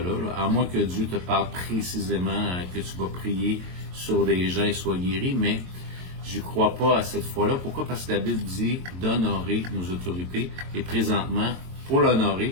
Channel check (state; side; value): late; left; 22 ms